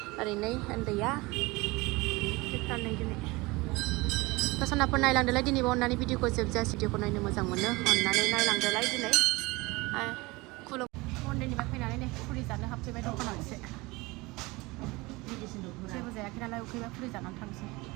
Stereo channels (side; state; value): left; quieter; 23.0 dB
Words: ओरैनो उन्दैया फिरथारनै दिनै सनाफोर नायलांदोलाय दिनैबो अननानै भिडिअखौ जोबजासे भिडिअखौ नायनो मोजां मोनो अननानै नायलांदोलाय दिनै खुलुम मन्दिरनिफ्राय फैनानै नै फुरि जानो हाबफैबाय दखानाव एसे जेबो जायाखै नालाय उखैबा फुरि जानानै थांसै